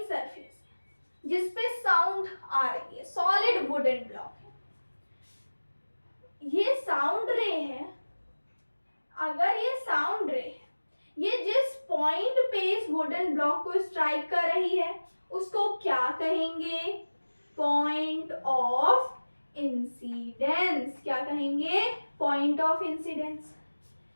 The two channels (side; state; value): both; inverted; correlation -1.00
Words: सरफेस है जिसपे साउंड आ रही है, सॉलिड वुडन ब्लॉक है, ये साउंड रे है, अगर ये साउंड रे है, ये जिस पॉइंट पे इस वुडन ब्लॉक को स्ट्राइक कर रही है उसको क्या कहेंगे? Point of incidence. क्या कहेंगे? Point of incidence.